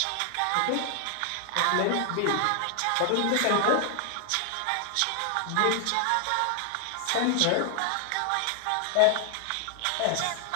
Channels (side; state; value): both; different; correlation 0.00